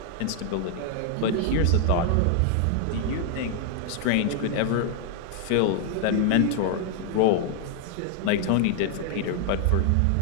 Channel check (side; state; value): both; different; correlation 0.00